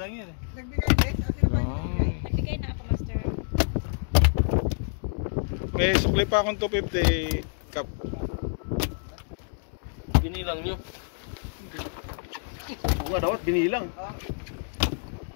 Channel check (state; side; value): silent; right; digital silence